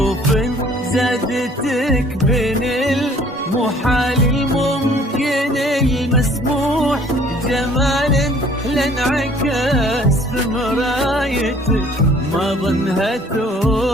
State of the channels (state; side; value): normal; both; correlation 0.56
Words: زادتك بين المحال الممكن المسموح جمال لانعكس في مرايتك ما ظنها